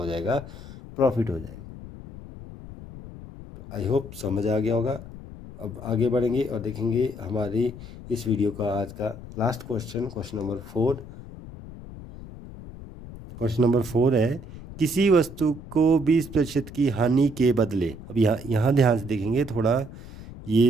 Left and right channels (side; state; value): left; noise; rumble, 14 dB below the sound